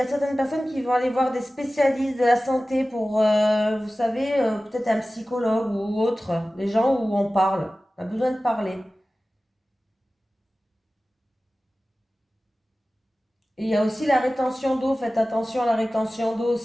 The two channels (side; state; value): both; normal; correlation 0.96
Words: certaines personnes qui vont aller voir des spécialistes de la santé pour, vous savez, peut-être un psychologue ou autre, des gens où on parle. On a besoin de parler. Et il y a aussi la rétention d'eau. Faites attention à la rétention d'eau